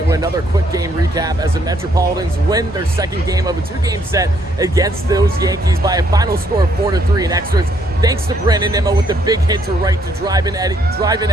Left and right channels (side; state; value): both; normal; correlation 0.69